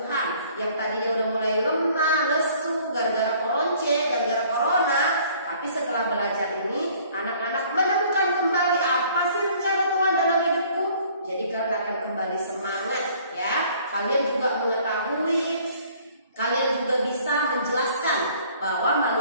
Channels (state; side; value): inverted; both; correlation -0.56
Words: Yang tadinya udah mulai lemah, lesu, gara-gara koronce, gara-gara corona. Tapi setelah belajar ini anak-anak menemukan kembali apa sih rencana Tuhan dalam hidupku. Jadi kalian akan kembali semangat ya. Kalian juga mengetahui, kalian juga bisa menjelaskan bahwa